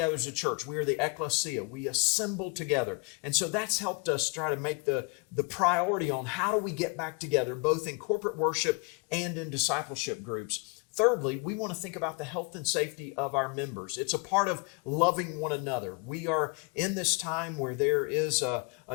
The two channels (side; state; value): right; quieter; 31.0 dB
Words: as a church. We are the ecclesia. We assemble together. And so that's helped us try to make the priority on how do we get back together, both in corporate worship and in discipleship groups. Thirdly, we want to think about the health and safety of our members. It's a part of loving one another. We are in this time where there is a